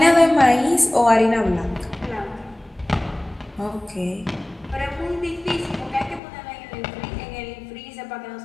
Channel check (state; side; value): drops out; right; at 6.2 s